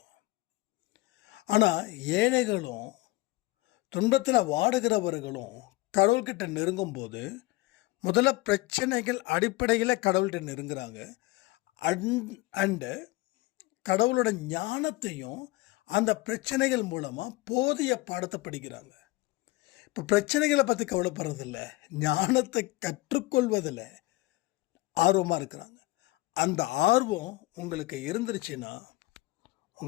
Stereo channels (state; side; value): quieter; right; 19.9 dB